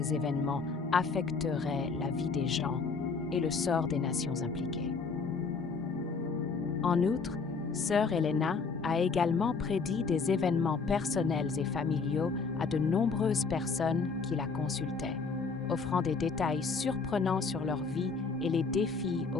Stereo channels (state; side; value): quieter; right; 4.8 dB